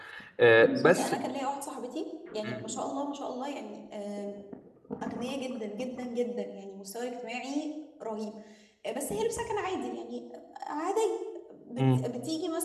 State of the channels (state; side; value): identical; both; correlation 1.00